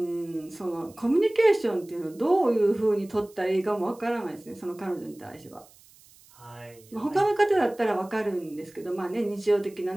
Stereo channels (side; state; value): right; noise; hiss, 26 dB below the sound